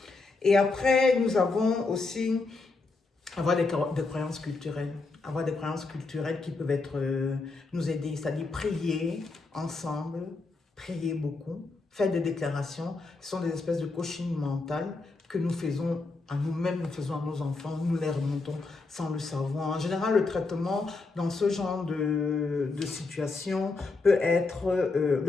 Et après, nous avons aussi avoir des croyances culturelles. Avoir des croyances culturelles qui peuvent être, nous aider, c'est-à-dire prier ensemble, prier beaucoup, faire des déclarations. Ce sont des espèces de coaching mental que nous faisons à nous-mêmes, nous faisons à nos enfants, nous les remontons sans le savoir. En général, le traitement dans ce genre de situation peut être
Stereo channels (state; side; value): quieter; right; 3.7 dB